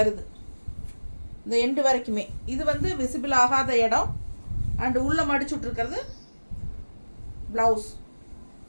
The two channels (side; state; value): both; inverted; correlation -1.00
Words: இந்த எண்டு வரைக்குமே இது வந்து விசிபிள் ஆகாத இடம். அண்டு உள்ளே மடிச்சுட்ருக்கிறது ப்ளவுஸ்.